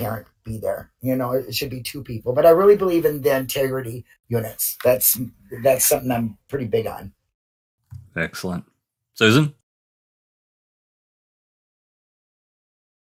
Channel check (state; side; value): identical; both; correlation 1.00